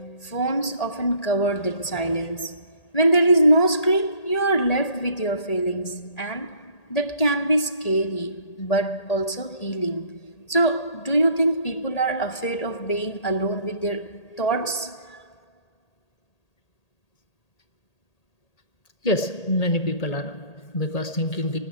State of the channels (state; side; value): late; right; 1.8 ms